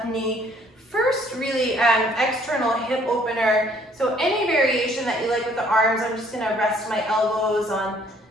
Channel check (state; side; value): normal; both; correlation 0.61